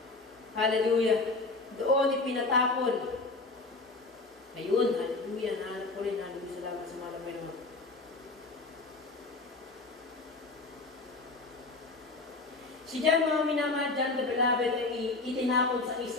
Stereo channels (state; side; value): quieter; right; 3.5 dB